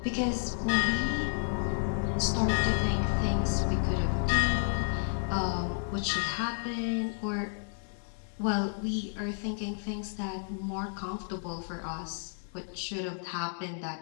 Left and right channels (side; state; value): right; silent; digital silence